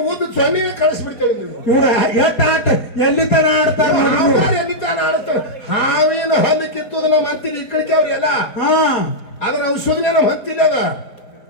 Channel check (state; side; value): late; right; 4.2 ms